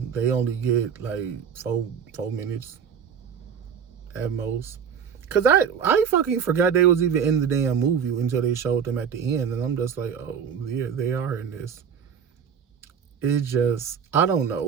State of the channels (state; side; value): quieter; left; 7.3 dB